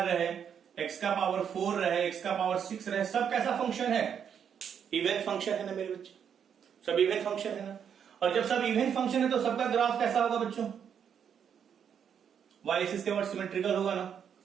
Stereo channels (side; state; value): left; quieter; 8.0 dB